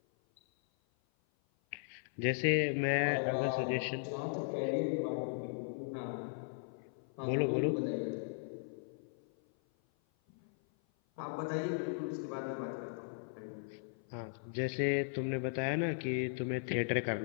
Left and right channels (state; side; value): silent; right; 53 dB below the other